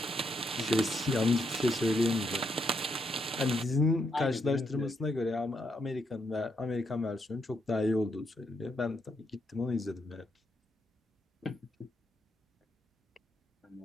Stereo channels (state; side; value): normal; both; correlation 0.78